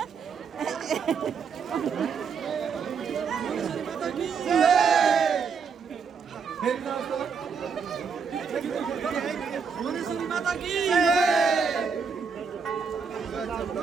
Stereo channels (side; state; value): left; quieter; 5.9 dB